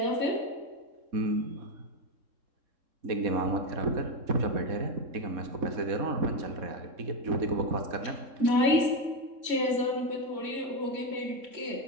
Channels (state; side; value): late; left; 3.7 ms